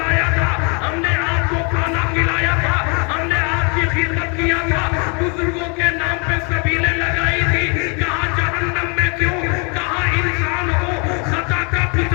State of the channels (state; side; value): quieter; right; 34.3 dB